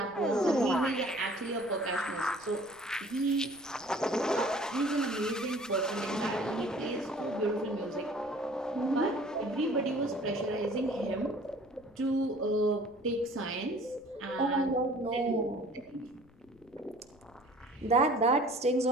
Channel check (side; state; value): left; noise; rumble, 28 dB below the sound